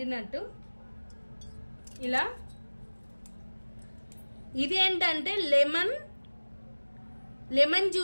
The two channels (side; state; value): both; inverted; correlation -1.00